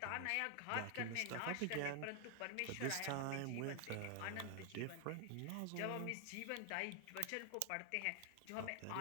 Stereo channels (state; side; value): different; both; correlation 0.00